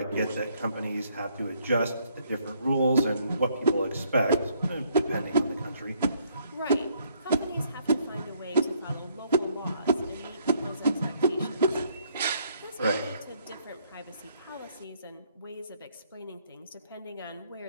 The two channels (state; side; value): inverted; both; correlation -0.68